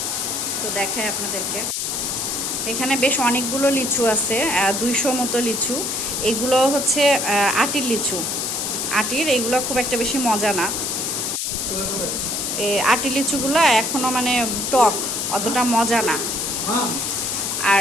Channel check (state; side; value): noise; left; hiss, 1 dB below the sound